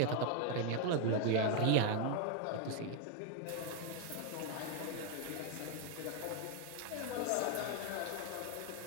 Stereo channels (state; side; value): different; both; correlation 0.00